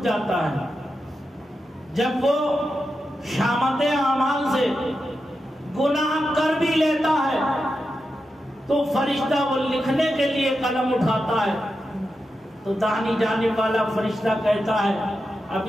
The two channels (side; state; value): both; normal; correlation 0.89